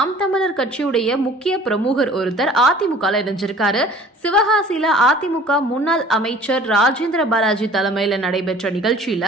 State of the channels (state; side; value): normal; both; correlation 0.49